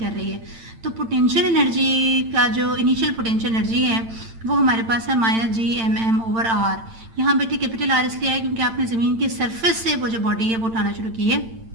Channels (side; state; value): left; late; 8.9 ms